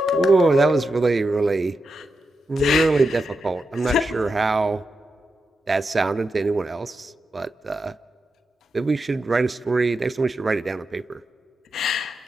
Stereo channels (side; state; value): both; normal; correlation 0.88